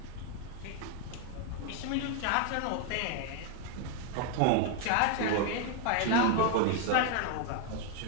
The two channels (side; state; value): both; different; correlation 0.00